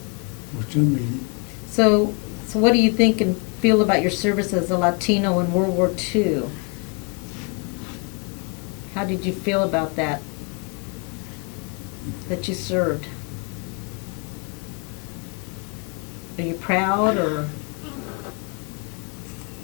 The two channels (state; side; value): quieter; right; 34.9 dB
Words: For some reason. So what do you think and feel about your service as a Latino in World War II? How did you feel about that you served? Are you proud or